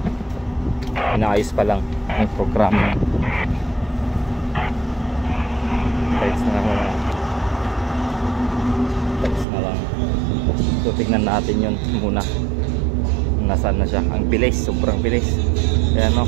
inaayos pa lang yung program. Text na lang. So tignan natin yun muna. Nasaan na siya. Ang bilis, sobrang bilis. Ayan o.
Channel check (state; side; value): drops out; left; at 9.5 s